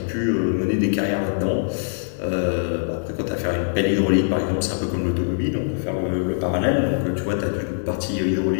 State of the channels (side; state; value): right; silent; digital silence